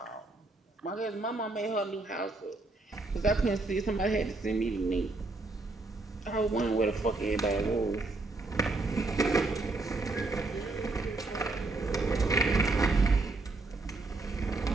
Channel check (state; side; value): quieter; left; 3.3 dB